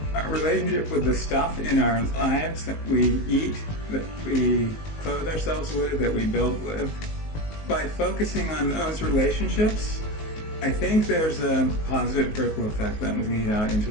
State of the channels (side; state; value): right; late; 19 ms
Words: our relationship with the stuff in our lives that we eat, that we clothe ourselves with, that we build with. By focusing on those relationships, I think there's a positive ripple effect that will lead out into